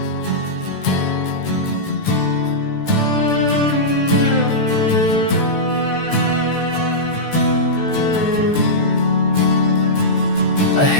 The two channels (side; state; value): right; late; 14 ms